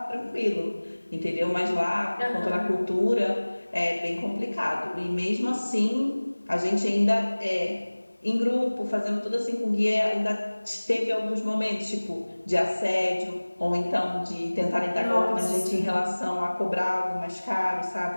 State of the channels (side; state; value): both; inverted; correlation -1.00